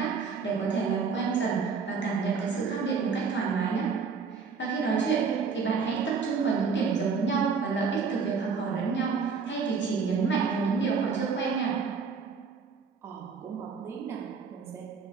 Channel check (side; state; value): left; quieter; 5.4 dB